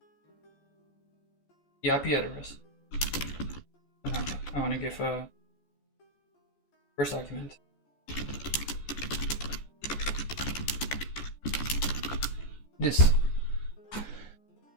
the IP address. No, I want to give a first argument. This.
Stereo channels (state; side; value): late; right; 14 ms